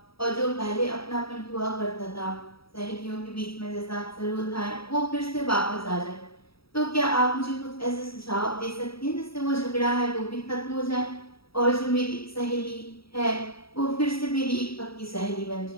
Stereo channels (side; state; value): right; late; 0.76 ms